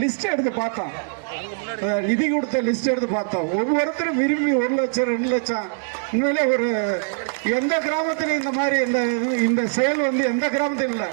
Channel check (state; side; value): silent; left; digital silence